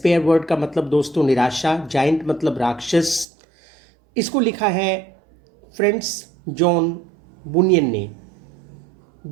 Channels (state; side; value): drops out; left; at 3.2 s